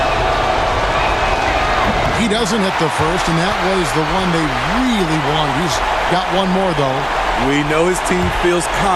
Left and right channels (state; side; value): identical; both; correlation 1.00